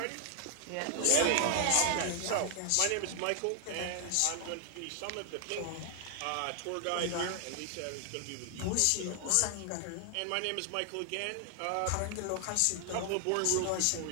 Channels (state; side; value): different; both; correlation 0.00